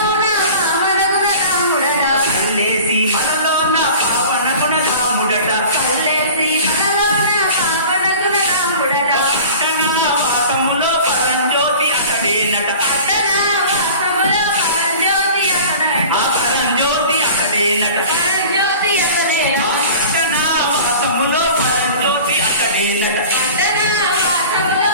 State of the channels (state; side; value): inverted; both; correlation -0.40